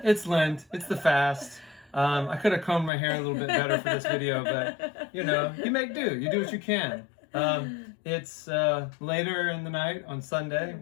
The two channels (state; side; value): drops out; right; at 2.9 s